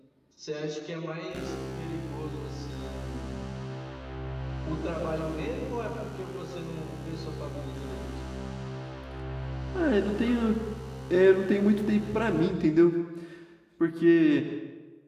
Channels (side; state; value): both; identical; correlation 1.00